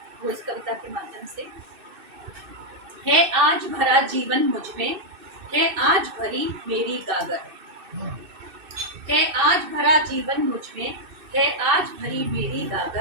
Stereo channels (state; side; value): late; left; 2.6 ms